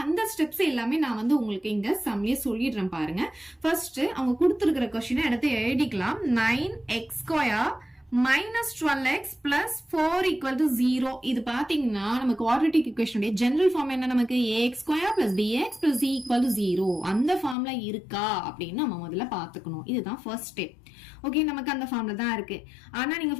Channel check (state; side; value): drops out; right; at 17.6 s